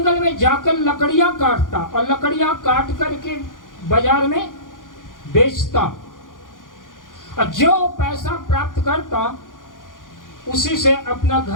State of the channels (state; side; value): late; right; 0.89 ms